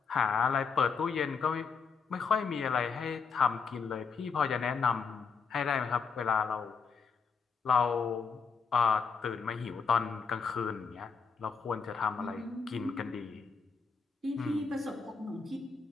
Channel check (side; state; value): right; quieter; 5.4 dB